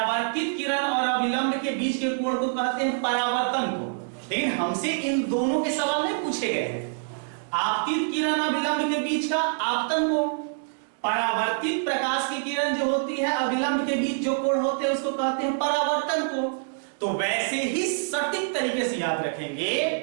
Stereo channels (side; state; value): left; silent; 61 dB below the other